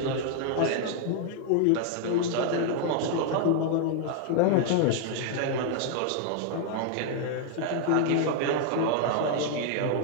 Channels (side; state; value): both; different; correlation 0.00